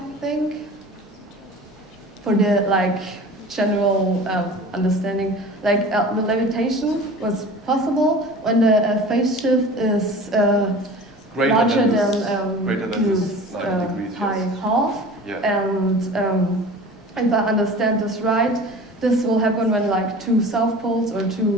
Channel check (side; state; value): both; normal; correlation 0.39